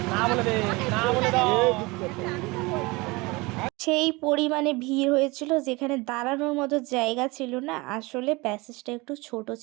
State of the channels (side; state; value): left; quieter; 24.3 dB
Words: সেই পরিমাণে ভিড় হয়েছিল, যেখানে দাঁড়ানোর মতো জায়গা ছিল না। আসলে প্যাসেজটা একটু ছোট